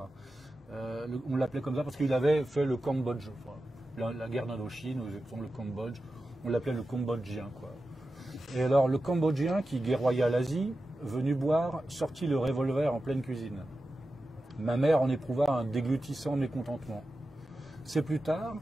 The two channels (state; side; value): normal; both; correlation 0.92